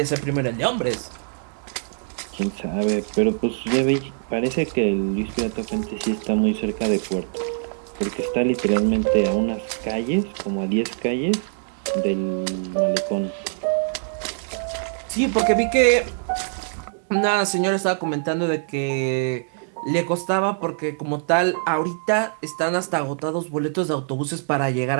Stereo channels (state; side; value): silent; left; digital silence